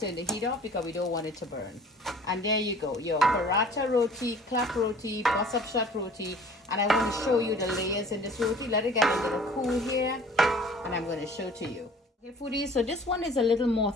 turn the heat off because we don't want it to burn. And there you go. Your paratha roti, clap roti, bus up shot roti. And I want to show you the layers in this roti. Let it get a little cool here. And I'm going to show to you. Okay, foodies. So this one is a little more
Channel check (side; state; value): both; normal; correlation 0.49